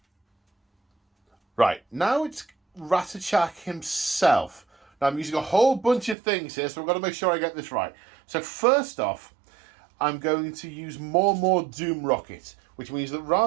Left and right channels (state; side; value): drops out; left; at 6.2 s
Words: Right, now it's Ratchet himself. Now I'm using a whole bunch of things here, so I've got to make sure I get this right. So first off, I'm going to use more Doom Rocket, which means that